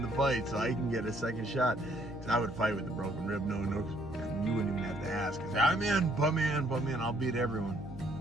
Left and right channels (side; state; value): right; noise; hum, 17 dB below the sound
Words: the fight so I can get a second shot. Because I would fight with a broken rib, no, and you wouldn't even have to ask. I say, I'm in, put me in, I'll beat everyone.